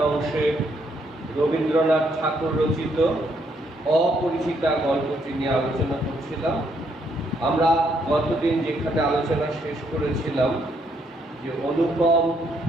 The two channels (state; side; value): normal; both; correlation 0.73